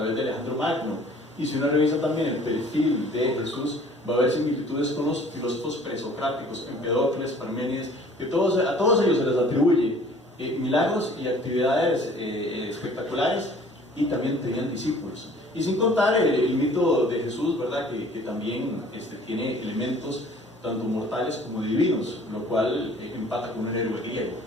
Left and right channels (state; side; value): normal; both; correlation 0.52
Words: de Alejandro Magno. Y si uno revisa también el perfil de Jesús, va a haber similitudes con los filósofos presocráticos, Empedocles, Parménides, que a todos ellos se les atribuye milagros y actividades espectaculares, y también tenían discípulos. Y sin contar el mito de Jesús, ¿verdad? Que también tiene elementos tanto mortales como divinos, lo cual empata con un héroe griego.